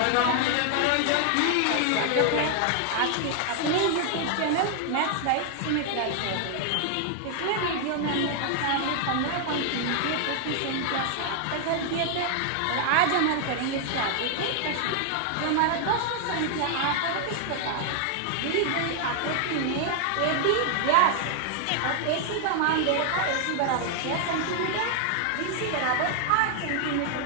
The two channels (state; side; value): different; both; correlation 0.00